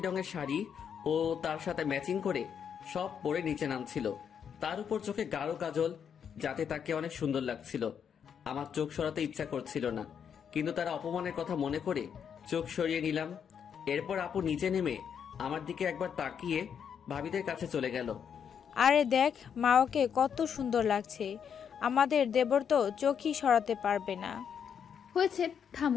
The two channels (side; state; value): right; quieter; 7.7 dB